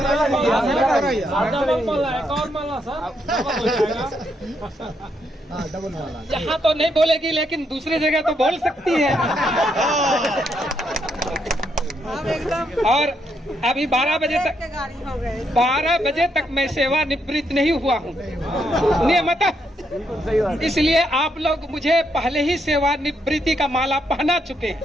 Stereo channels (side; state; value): both; normal; correlation 0.77